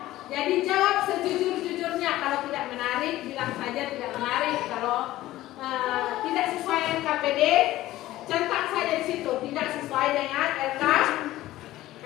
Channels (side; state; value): right; quieter; 15.7 dB